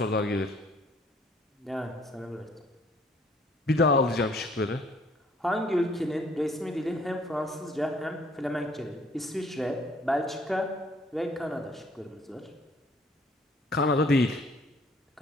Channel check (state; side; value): normal; both; correlation 0.60